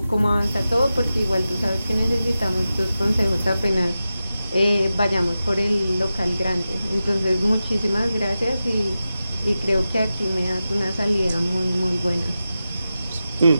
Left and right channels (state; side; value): inverted; both; correlation -0.93